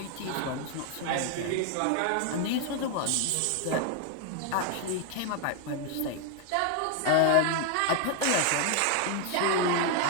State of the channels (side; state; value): both; different; correlation 0.00